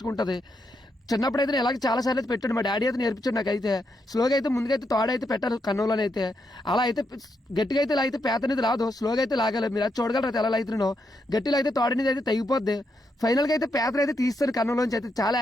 ఉంటుంది. చిన్నప్పుడు అయితే ఇలాగ చాలా సార్లు అయితే పెట్టాడు. మా డాడీ అయితే నేర్పించాడు నాకైతే. స్లోగా అయితే ముందుకైతే తోడైతే పెట్టారు కన్నులోనైతే. అలా అయితే గట్టిగా అయితే ఇలా అయితే పేత అనేది రాదు, స్లోగా అయితే లాగాలి. మీరు అది చూడగలరు అయితే ఎలా అవుతున్నానో. గట్టిలో అయితే తోడనేది అయితే తెగిపోద్ది. ఫైనల్గా అయితే పేతను అయితే తీస్తాను కన్నులోంచి. అయితే చాలా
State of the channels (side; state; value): both; normal; correlation 0.81